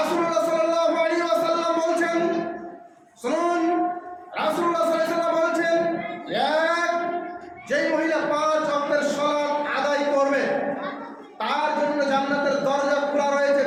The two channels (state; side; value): identical; both; correlation 1.00